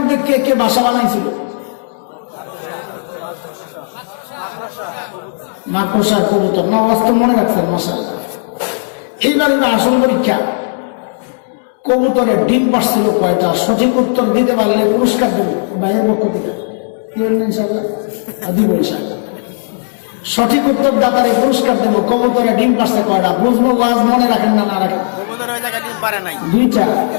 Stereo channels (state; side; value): silent; right; digital silence